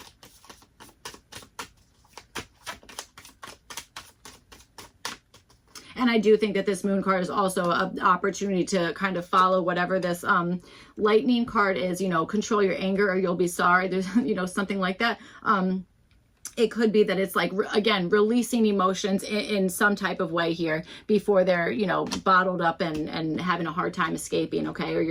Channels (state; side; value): identical; both; correlation 1.00